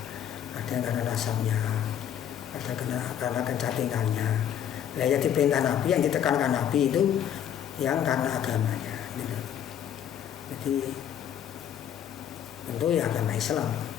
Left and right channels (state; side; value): quieter; right; 9.6 dB